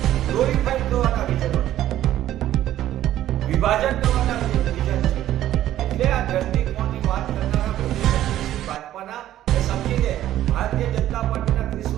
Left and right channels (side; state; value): left; quieter; 12.9 dB